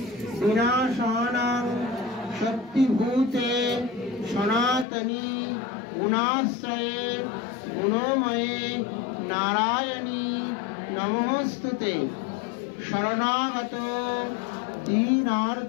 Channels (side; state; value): right; drops out; at 4.9 s